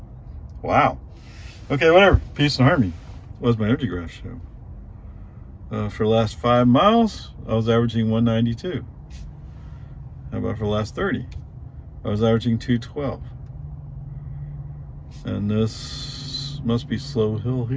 wow. Okay, whatever. Peace and harmony. What does my energy graph show? For the last 5 miles, I was averaging 192. How about for the last 30? I was averaging 212. And this must be slow hill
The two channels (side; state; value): both; identical; correlation 1.00